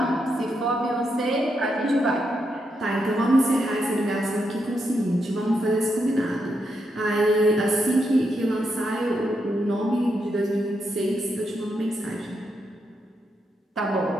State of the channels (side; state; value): both; normal; correlation 0.82